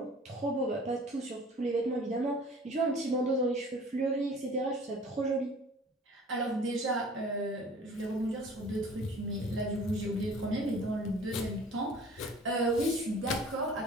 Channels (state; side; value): normal; both; correlation 0.47